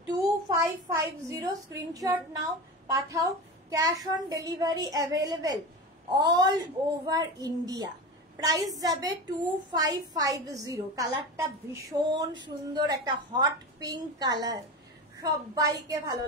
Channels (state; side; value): normal; both; correlation 0.26